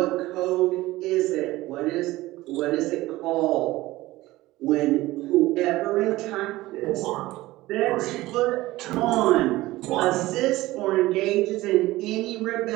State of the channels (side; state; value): left; quieter; 18.1 dB